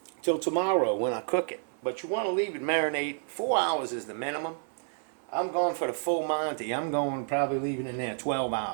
till tomorrow when I cook it. But you want to leave it marinate. 4 hours is the minimum. I'm going for the full Monty. I'm going probably leaving it in there 12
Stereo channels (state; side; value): silent; left; 58 dB below the other